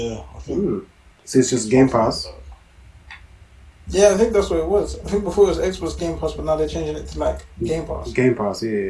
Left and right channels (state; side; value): identical; both; correlation 1.00